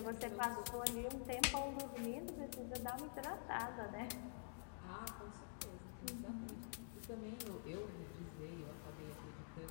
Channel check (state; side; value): silent; right; digital silence